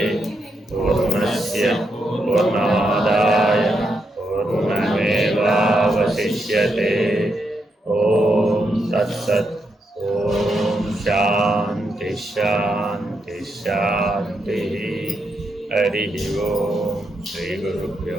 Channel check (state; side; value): normal; both; correlation 0.81